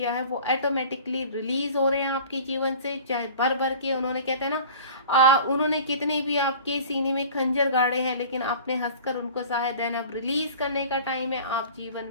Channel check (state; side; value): inverted; both; correlation -0.43